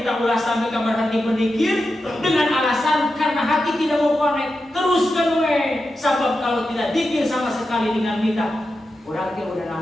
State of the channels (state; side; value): normal; both; correlation 0.89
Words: ulah sampai kamar hati berzikir dengan alasan karena hati tidak mau connect. Teruskan we, sebab kalau tidak zikir sama sekali dengan lidah, orang dia udah